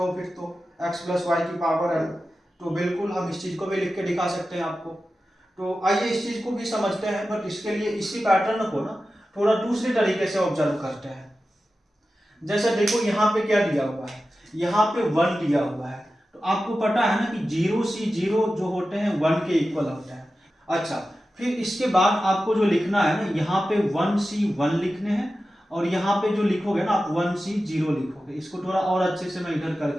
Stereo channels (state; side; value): normal; both; correlation 0.93